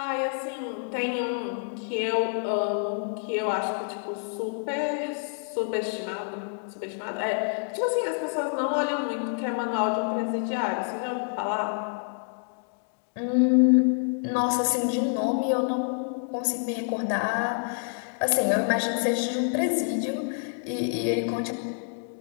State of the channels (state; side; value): silent; right; 60 dB below the other